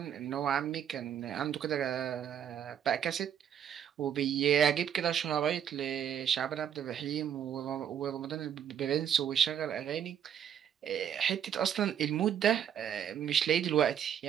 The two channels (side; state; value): left; quieter; 9.1 dB